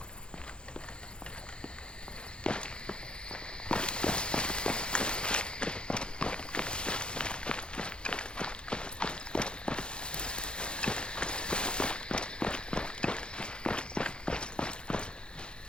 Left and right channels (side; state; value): right; late; 0.052 ms